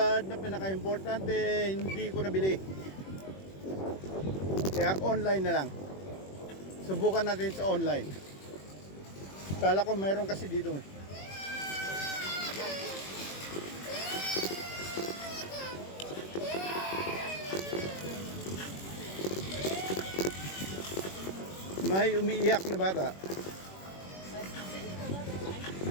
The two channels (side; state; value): right; late; 21 ms